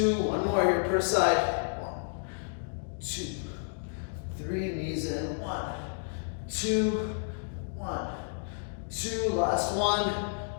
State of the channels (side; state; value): right; silent; digital silence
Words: One more here per side. 1, 2, 3. Knees in. 1, 2. 1, 2. Last one.